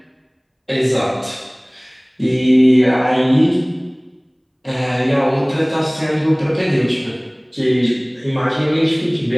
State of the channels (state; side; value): identical; both; correlation 1.00